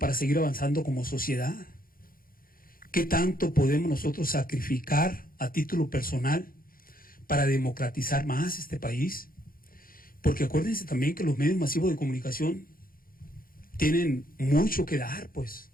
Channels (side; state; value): right; late; 0.42 ms